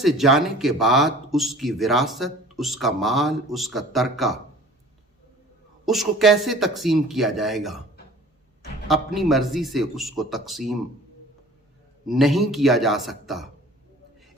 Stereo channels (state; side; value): normal; both; correlation 0.47